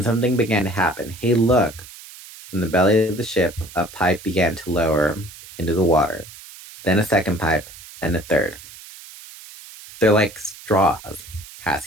something began to happen. Hey, look! From the belly of the ship, a pipe began to lower into the water. Then a second pipe, and a third. They're like straws,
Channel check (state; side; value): noise; right; hiss, 18 dB below the sound